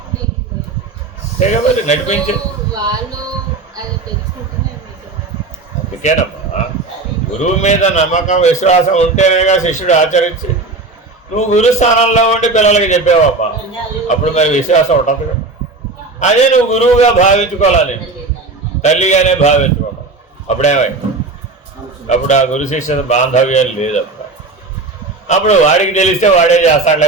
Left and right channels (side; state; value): left; quieter; 3.5 dB